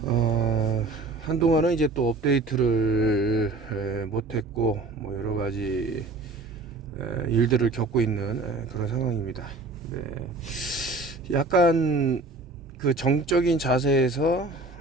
한동안은 이제 또 업데이트를 못했고 뭐 여러 가지 일들을 겪고 있는 그런 상황입니다. 네. 약간 그 정적인 자세에서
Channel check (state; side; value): quieter; left; 3.2 dB